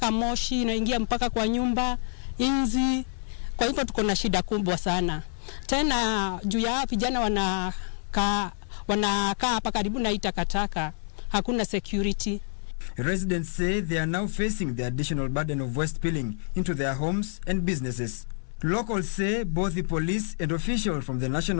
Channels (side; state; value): right; silent; 59 dB below the other